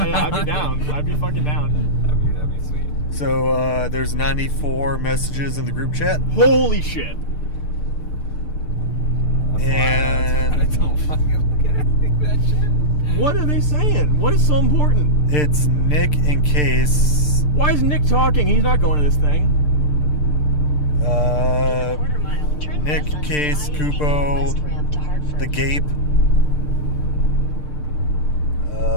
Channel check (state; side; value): late; right; 6.7 ms